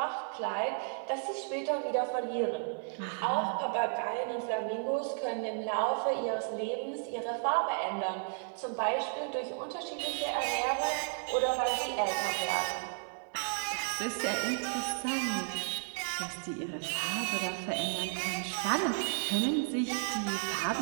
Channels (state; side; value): silent; left; 55 dB below the other